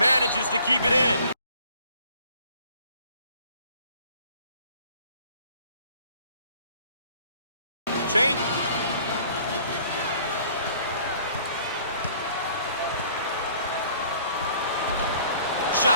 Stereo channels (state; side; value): inverted; both; correlation -0.56